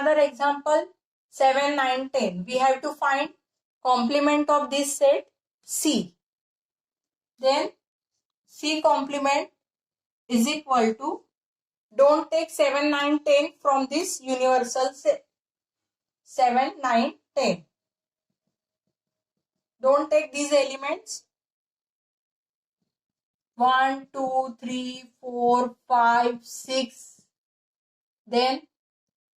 example. 7, 9, 10. We have to find complement of this set C. Then C complement is equal to, don't take 7, 9, 10 from this universal set. 7, 9, 10. Don't take these elements. 1, 2, 3, 4, 5, 6. Then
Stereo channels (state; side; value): identical; both; correlation 1.00